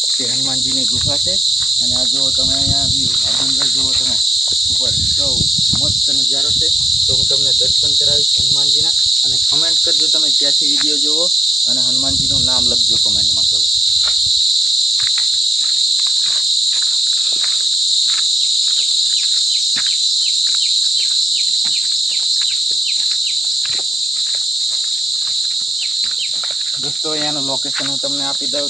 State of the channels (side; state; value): both; normal; correlation 0.85